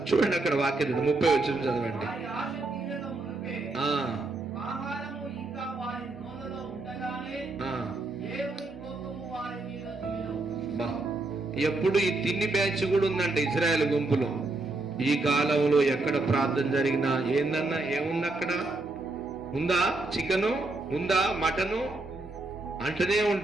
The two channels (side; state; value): left; quieter; 3.1 dB